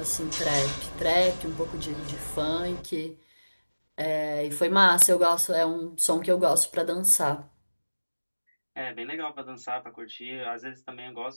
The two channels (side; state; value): both; inverted; correlation -1.00